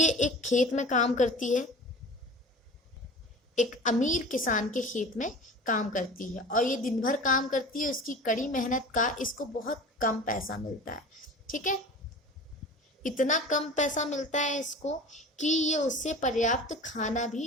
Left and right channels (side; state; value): both; normal; correlation 0.38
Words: एक खेत में काम करती है, एक अमीर किसान के खेत में काम करती है और ये दिन भर काम करती है. उसकी कड़ी मेहनत का इसको बहुत कम पैसा मिलता है. ठीक है. इतना कम पैसा मिलता है इसको कि ये उससे पर्याप्त खाना भी